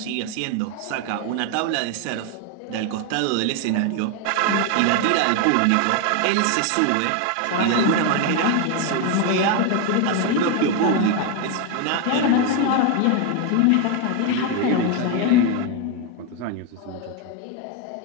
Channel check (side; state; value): both; different; correlation 0.01